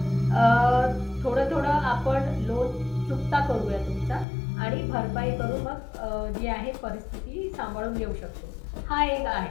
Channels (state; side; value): drops out; right; at 4.2 s